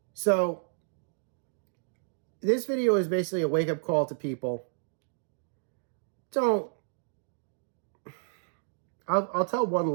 So, this video is basically a wake-up call to people. I'll tell one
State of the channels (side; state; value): left; silent; digital silence